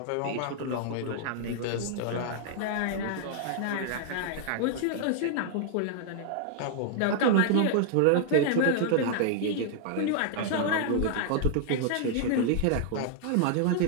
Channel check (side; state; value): both; different; correlation -0.01